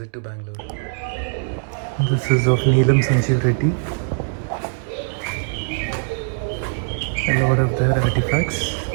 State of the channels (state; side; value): silent; left; digital silence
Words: to Bangalore. This is of Neelam Sanjeev Reddy. A lot of their artifacts.